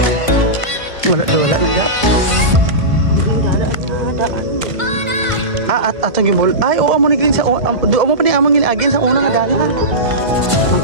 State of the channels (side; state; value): left; late; 1.5 ms